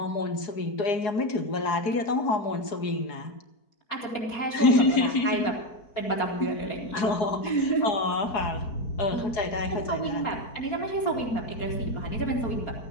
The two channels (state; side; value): late; right; 4.8 ms